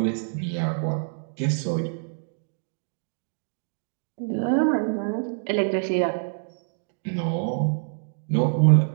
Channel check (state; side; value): silent; left; digital silence